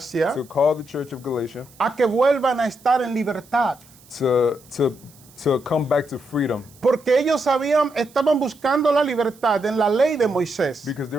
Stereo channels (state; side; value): noise; right; hiss, 26 dB below the sound